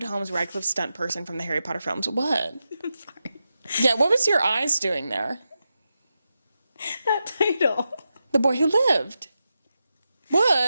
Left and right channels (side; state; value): both; inverted; correlation -0.89